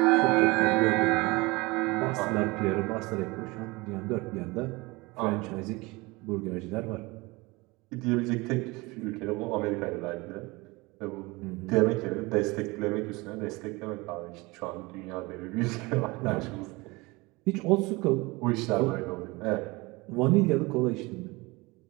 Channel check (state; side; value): quieter; left; 23.9 dB